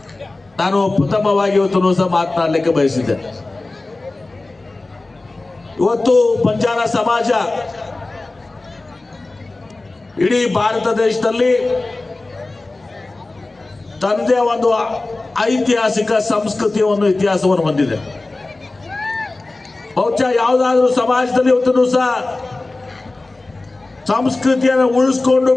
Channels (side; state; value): right; quieter; 3.1 dB